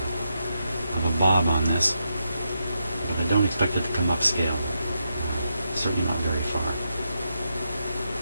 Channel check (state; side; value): inverted; both; correlation -0.83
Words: of a bob on this, but I don't expect it to come upscale. Certainly not very far.